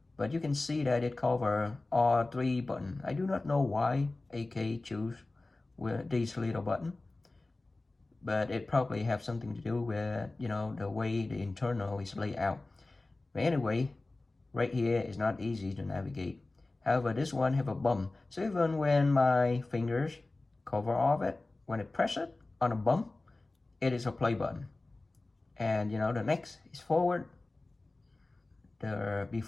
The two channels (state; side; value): quieter; right; 3.1 dB